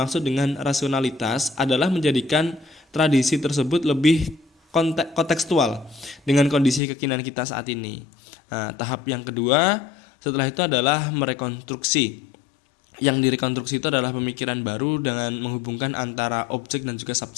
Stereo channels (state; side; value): drops out; right; at 6.8 s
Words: dengan rasionalitas adalah menjadikan tradisi tersebut lebih kontekstual dengan kondisi kekinian kita saat ini. Tahap yang kedua setelah itu adalah merekonstruksi. Yang direkonstruksi itu adalah pemikiran baru dengan menghubungkan antara objek dan juga